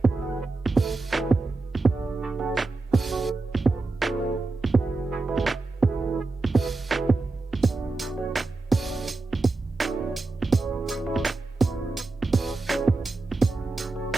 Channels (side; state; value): left; quieter; 3.5 dB